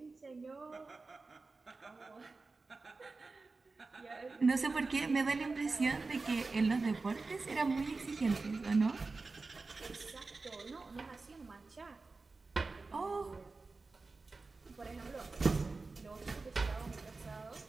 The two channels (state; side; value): quieter; left; 3.8 dB